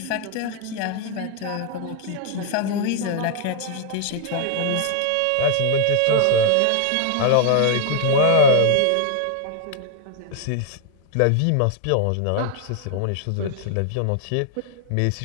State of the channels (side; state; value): both; different; correlation -0.01